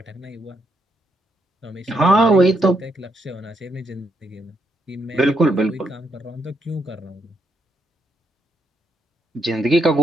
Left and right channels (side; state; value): both; normal; correlation 0.78